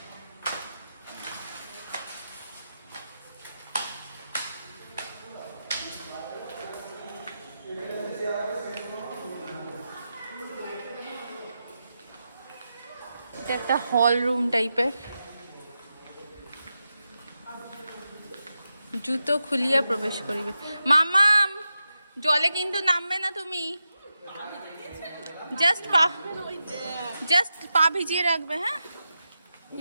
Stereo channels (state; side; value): inverted; both; correlation -0.89